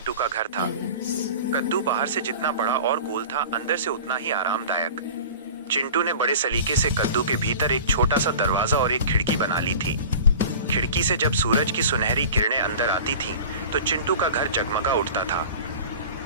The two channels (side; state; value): both; inverted; correlation -0.38